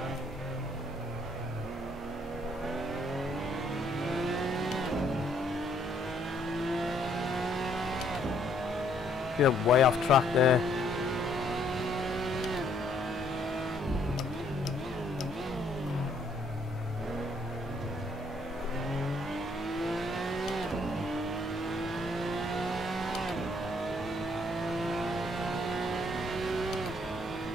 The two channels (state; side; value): normal; both; correlation 0.67